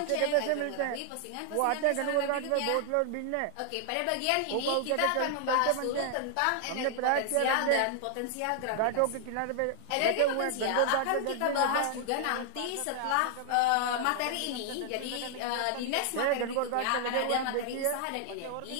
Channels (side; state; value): both; different; correlation 0.00